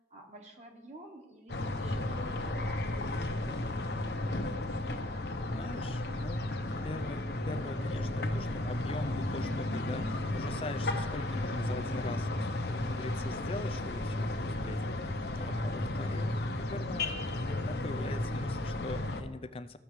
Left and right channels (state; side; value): normal; both; correlation 0.62